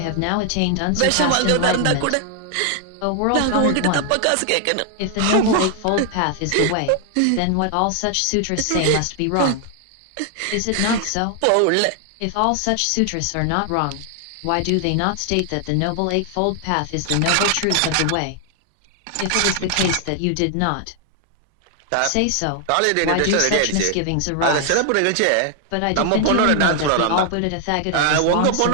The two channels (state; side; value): different; both; correlation 0.00